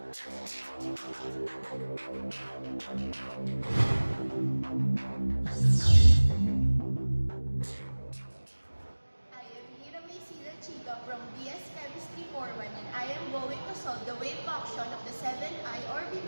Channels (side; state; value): both; inverted; correlation -1.00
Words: BS Chemistry 41, and I am going to solve the wave function of the 7i